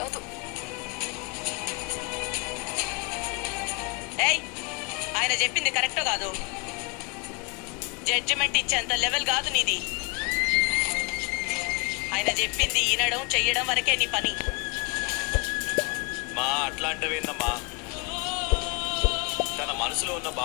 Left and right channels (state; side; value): quieter; right; 30.5 dB